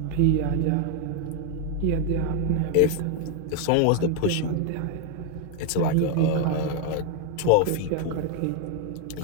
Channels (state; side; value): different; both; correlation 0.01